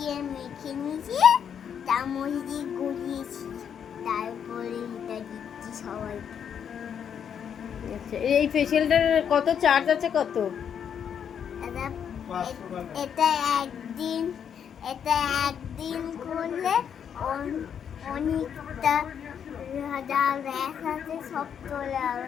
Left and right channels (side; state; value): right; quieter; 8.1 dB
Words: মেখে নিয়েছি, চামচ দিয়ে গলিয়েছি। তারপরে এটা দিচ্ছি সবাইকে। আচ্ছা, এই ফেসিয়ালটার কত চার্জ আছে কত? এটা একদিন এটা একদিন করলে অনেকটা হাজার র্যাশ আছে সব চলে যাবে